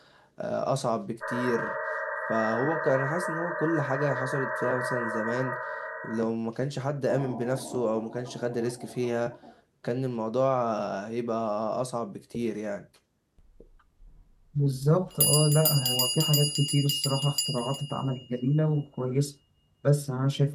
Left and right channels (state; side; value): identical; both; correlation 1.00